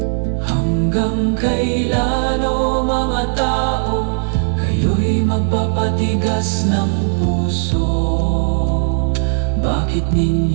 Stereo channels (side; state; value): left; silent; 58 dB below the other